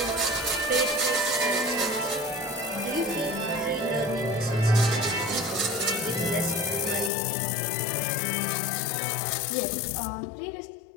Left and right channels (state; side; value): drops out; right; at 7.1 s